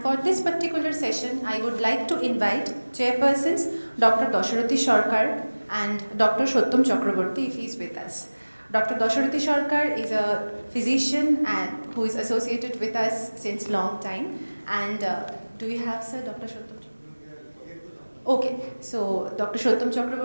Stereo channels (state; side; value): inverted; both; correlation -1.00